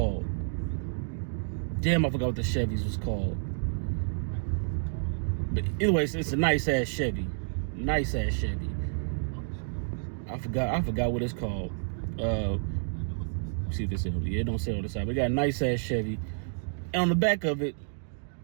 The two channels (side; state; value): left; silent; digital silence